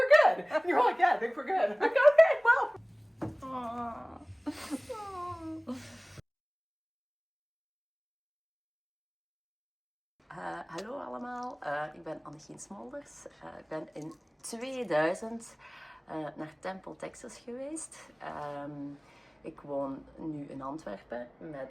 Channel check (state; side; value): identical; both; correlation 1.00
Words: good. And you're like, yeah, I think we're good. I'm like, okay, well. Aww. Hallo allemaal, ik ben Annechien Smolders. Ik ben in 2000 naar Temple, Texas geweest. Ik woon nu in Antwerpen